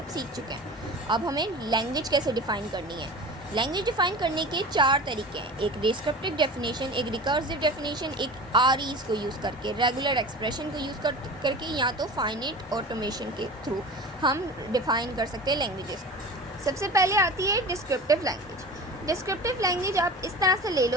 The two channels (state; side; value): normal; both; correlation 0.35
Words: सीख चुके हैं। अब हमें लैंग्वेज कैसे डिफ़ाइन करनी है। लैंग्वेज डिफ़ाइन करने के 4 तरीके हैं। एक डिस्क्रिप्टिव डेफिनेशन, एक रिकर्सिव डेफिनेशन, एक आरईज को यूज़ करके, रेगुलर एक्सप्रेशन को यूज़ करके, या तो फाइनाइट ऑटोमेशन के थ्रू हम डिफ़ाइन कर सकते हैं लैंग्वेजेस। सबसे पहले आती है डिस्क्रिप्टिव लैंग्वेज। डिस्क्रिप्टिव लैंग्वेज आप इस तरह से ले